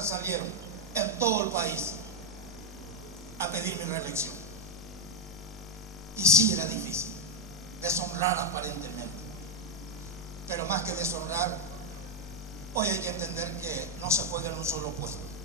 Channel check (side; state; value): both; normal; correlation 0.06